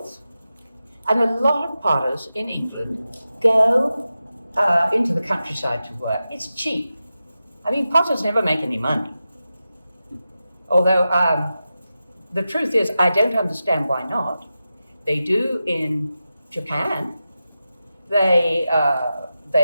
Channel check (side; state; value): both; inverted; correlation -0.92